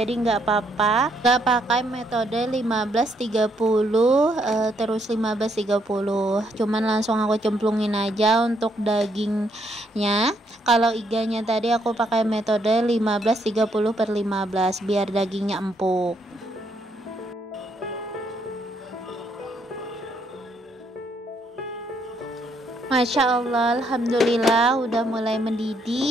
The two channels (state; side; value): normal; both; correlation 0.73